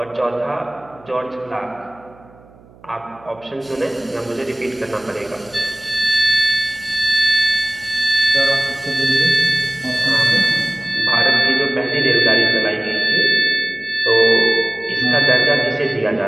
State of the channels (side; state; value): right; noise; hum, 26 dB below the sound